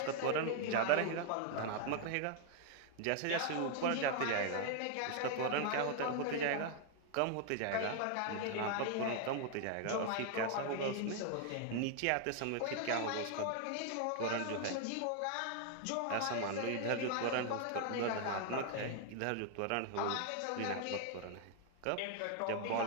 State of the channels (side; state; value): both; different; correlation 0.00